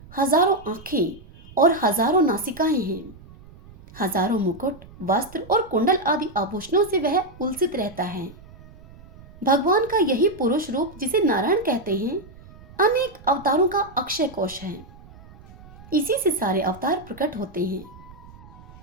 हजारों आंखें और हजारों नासिकाएं हैं। हजारों मुकुट, वस्त्र और कुंडल आदि आभूषणों से वह उलसित रहता है। भगवान का यही पुरुष रूप, जिसे नारायण कहते हैं, अनेक अवतारों का अक्षय कोश है। इसी से सारे अवतार प्रकट होते हैं।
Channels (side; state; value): right; noise; rumble, 21 dB below the sound